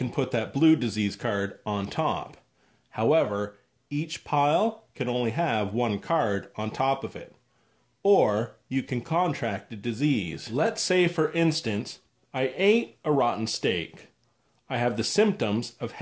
put that blue disease card on top. However, each pile can only have 1 card on top of it. Or you can contract a disease. Let's say, for instance, I ate a rotten steak. I have the symptoms of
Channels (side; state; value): both; identical; correlation 1.00